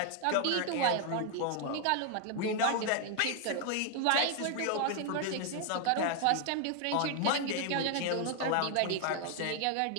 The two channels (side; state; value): both; different; correlation 0.00